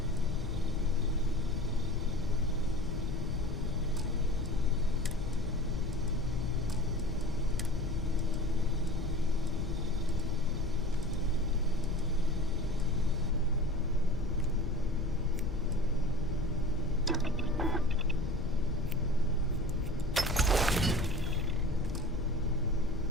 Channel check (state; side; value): normal; both; correlation 0.39